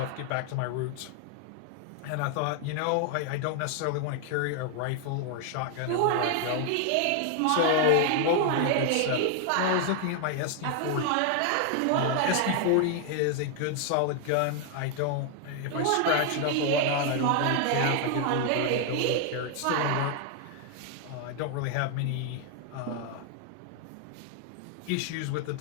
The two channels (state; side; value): different; both; correlation 0.00